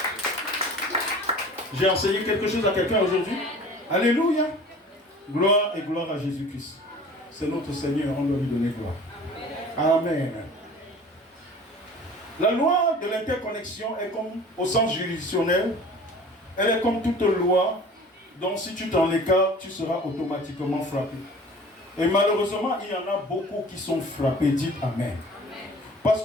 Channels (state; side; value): normal; both; correlation 0.44